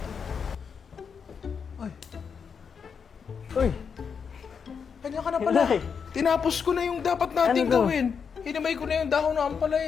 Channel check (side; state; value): right; quieter; 6.4 dB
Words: Uy! Kanya ka na pala. Tinapos ko na yung dapat nating Ano to? gawin. Hinimay ko na yung dahon ng